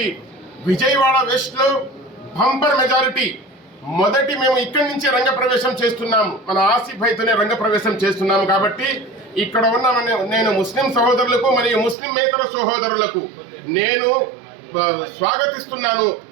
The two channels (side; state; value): left; drops out; at 12.0 s